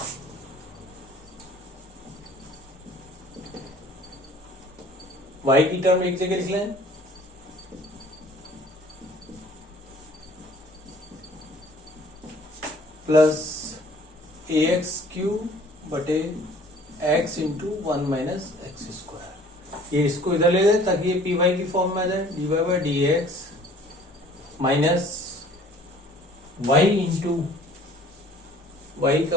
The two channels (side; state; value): both; normal; correlation 0.53